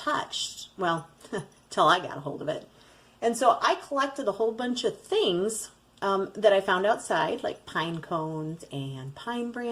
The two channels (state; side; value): identical; both; correlation 1.00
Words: well, till I got a hold of it. And so I collected a whole bunch of things that I found outside, like pine cones and pine